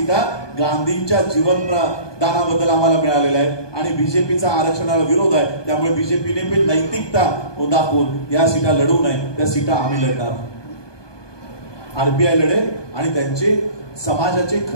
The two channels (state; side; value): late; right; 1.2 ms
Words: गांधींच्या जीवनदानाबद्दल आम्हाला मिळालेल्या आहेत आणि बीजेपीचा आरक्षणाला विरोध आहे, त्यामुळे बीजेपीने पण नैतिकता दाखवून या सीटा लढवू नये. त्या सीटा आम्ही लढणार. आरपीआय लढेल आणि त्यांचे समाजाचे